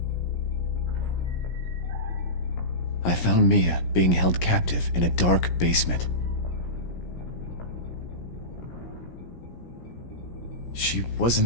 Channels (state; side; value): late; right; 17 ms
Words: I found Mia being held captive in a dark basement. She